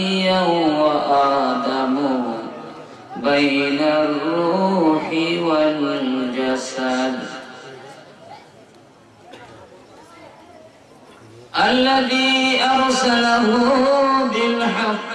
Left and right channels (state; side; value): identical; both; correlation 1.00